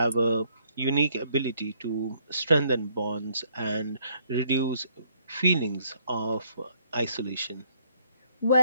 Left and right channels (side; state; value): both; inverted; correlation -0.67